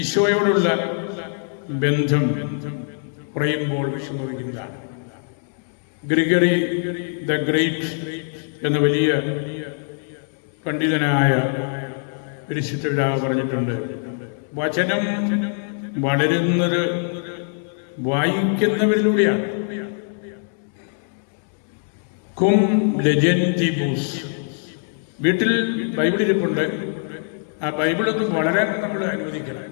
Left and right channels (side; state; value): right; silent; 64 dB below the other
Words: ഈശോയോടുള്ള ബന്ധം കുറയുമ്പോൾ വിഷമിക്കുന്നതാണ്. ഗ്രിഗറി ദ ഗ്രേറ്റ് എന്ന വലിയ പണ്ഡിതനായ പരിശുദ്ധ പിതാവ് പറഞ്ഞിട്ടുണ്ട്, വചനം വളരുന്നത് വായിക്കുന്നവരിലൂടെയാണ്. കും ലെജൻറ്റിബൂസ്. വീട്ടിൽ ബൈബിൾ ഇരിപ്പുണ്ട്, ആ ബൈബിളൊന്ന് വളരാൻ നമ്മൾ അനുവദിക്കണം.